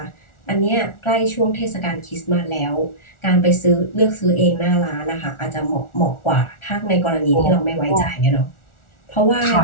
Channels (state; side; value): late; right; 1.4 ms